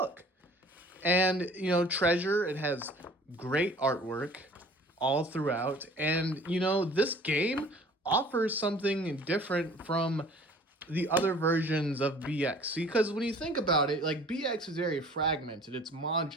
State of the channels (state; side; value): normal; both; correlation 0.49